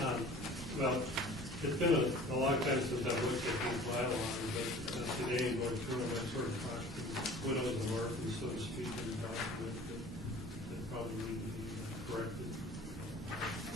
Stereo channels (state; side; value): normal; both; correlation 0.45